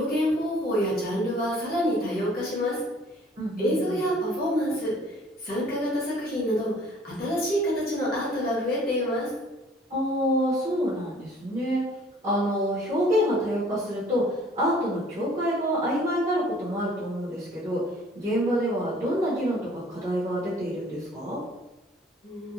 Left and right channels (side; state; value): both; normal; correlation 0.55